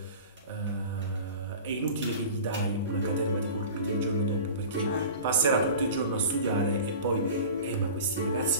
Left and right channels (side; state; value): both; inverted; correlation -0.38